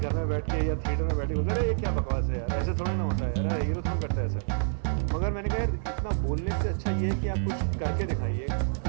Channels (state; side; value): silent; left; 59 dB below the other